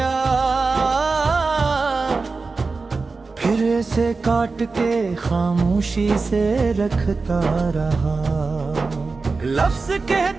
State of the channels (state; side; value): quieter; left; 4.1 dB